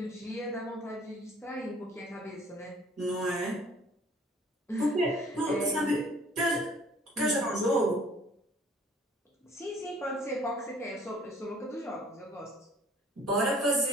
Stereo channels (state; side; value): normal; both; correlation 0.55